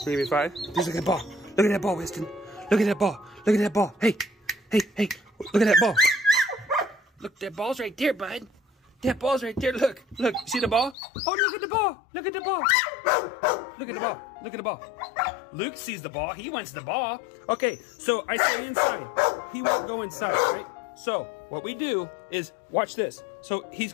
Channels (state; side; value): drops out; right; at 11.0 s